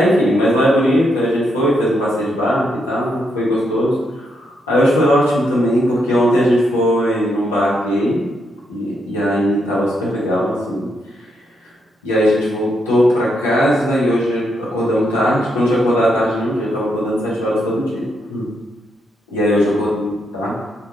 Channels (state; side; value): normal; both; correlation 0.79